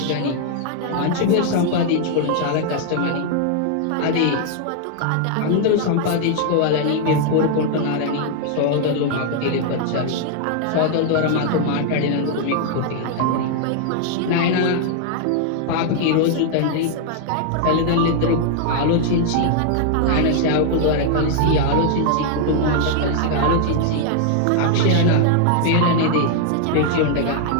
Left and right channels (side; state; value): both; different; correlation 0.00